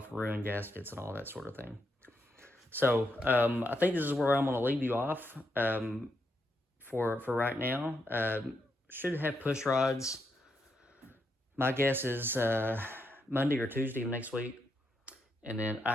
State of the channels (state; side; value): normal; both; correlation 0.81